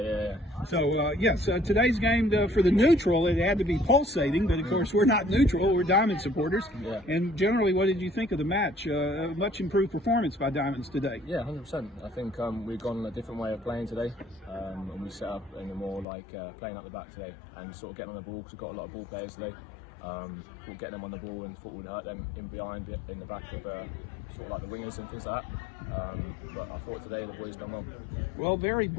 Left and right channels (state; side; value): drops out; right; at 16.1 s